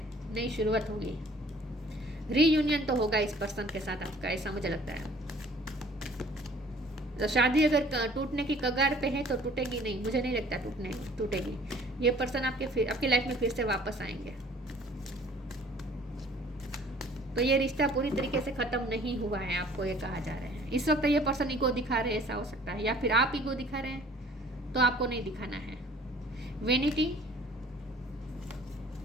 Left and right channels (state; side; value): normal; both; correlation 0.53